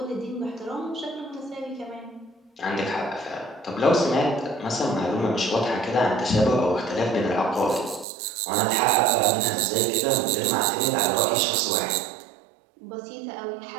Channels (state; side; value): drops out; left; at 8.1 s